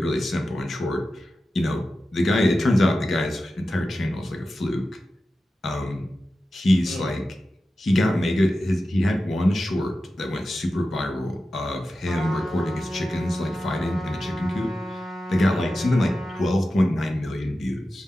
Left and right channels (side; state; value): both; normal; correlation 0.93